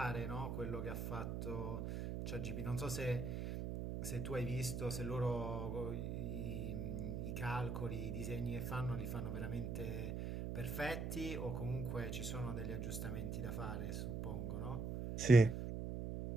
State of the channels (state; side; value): noise; right; hum, 3 dB below the sound